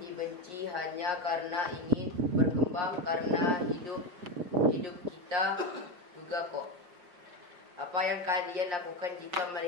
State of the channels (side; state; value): left; late; 5.6 ms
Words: hanya karena ingin berkembang, karena hidup kita juga kok. Apa yang kalian lakukan jika